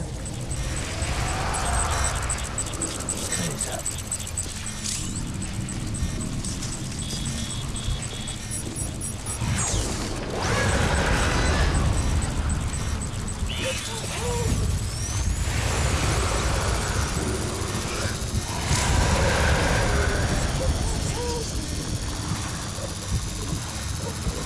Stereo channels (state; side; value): identical; both; correlation 1.00